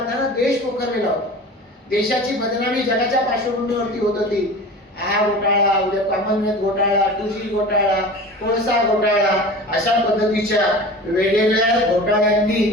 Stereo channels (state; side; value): normal; both; correlation 0.36